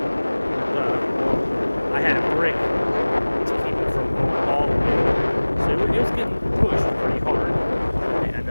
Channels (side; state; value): both; inverted; correlation -1.00